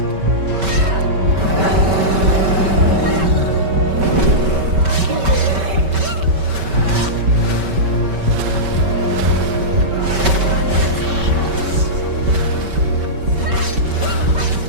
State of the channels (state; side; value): late; left; 5.2 ms